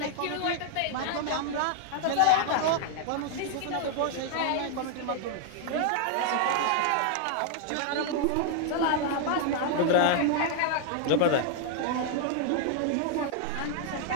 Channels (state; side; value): different; both; correlation 0.00